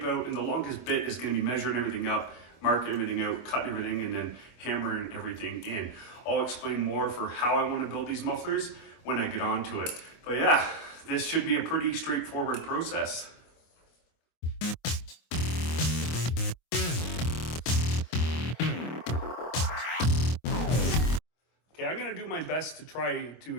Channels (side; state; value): right; late; 25 ms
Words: out, and the longest bit is going to be measuring everything up, marking everything out, cutting everything, and then hammering everything in. I'll explain more for how I want to build these mufflers when I get onto it. But yeah, this should be a pretty straightforward process. Okay, I'm going to do my best to try